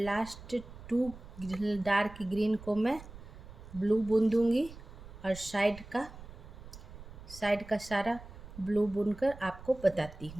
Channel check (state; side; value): noise; right; rumble, 16 dB below the sound